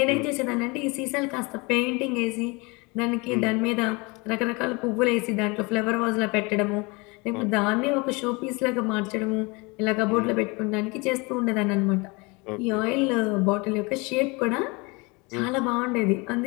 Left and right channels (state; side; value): quieter; right; 27.2 dB